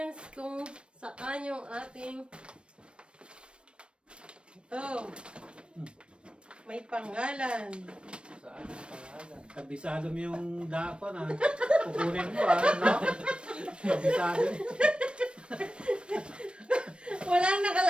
Kung saan yung ating... Ito. May pangalan. Saan yung pangalan? Kabisado mo yung dako na. Kukunin mo no? Kabisado. Walang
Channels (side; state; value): left; late; 0.057 ms